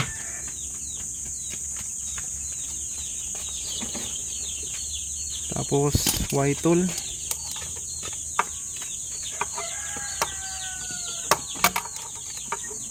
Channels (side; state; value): both; identical; correlation 1.00